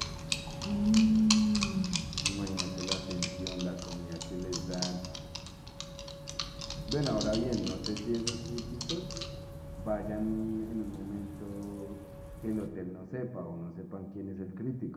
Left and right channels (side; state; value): both; identical; correlation 1.00